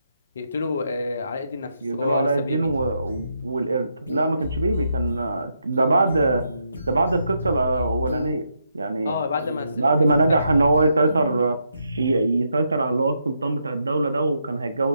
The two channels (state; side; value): inverted; both; correlation -0.80